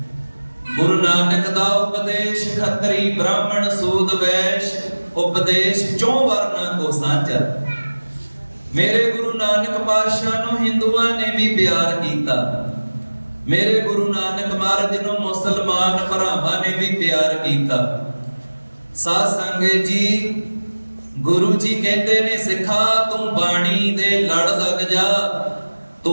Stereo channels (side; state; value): both; inverted; correlation -1.00